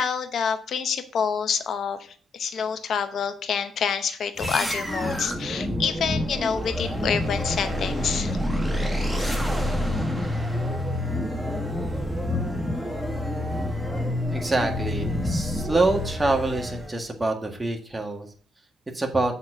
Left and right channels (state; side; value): normal; both; correlation 0.79